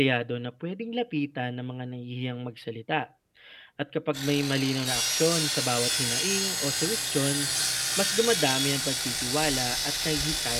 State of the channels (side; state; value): both; identical; correlation 1.00